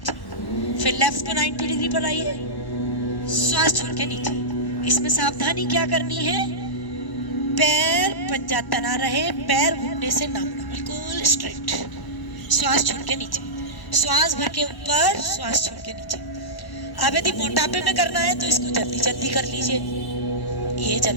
फिर लेफ्ट को 90 डिग्री पर लाइए। श्वास छोड़ के नीचे। इसमें सावधानी क्या करनी है, पैर पंजा तना रहे, पैर घुटने से ना मुड़े, बिल्कुल स्ट्रेट। श्वास छोड़ के नीचे, श्वास भर के ऊपर, श्वास छोड़ के नीचे। अब यदि मोटापे में करना है तो इसको जल्दी जल्दी कर लीजिए। ये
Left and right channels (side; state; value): right; late; 1.1 ms